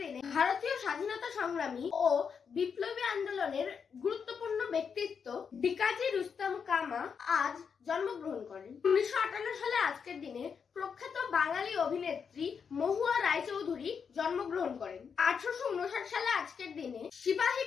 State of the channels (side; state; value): right; quieter; 6.4 dB